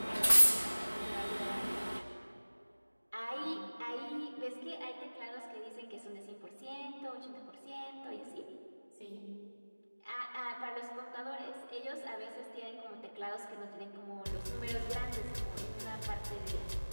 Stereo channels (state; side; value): inverted; both; correlation -1.00